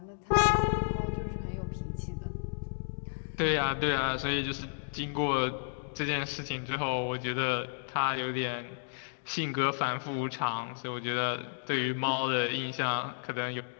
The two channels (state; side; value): silent; right; digital silence